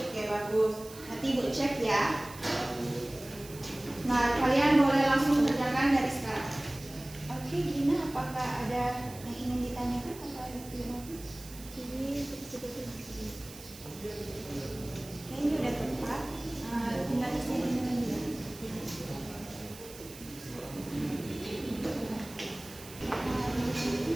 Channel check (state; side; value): noise; right; hiss, 16 dB below the sound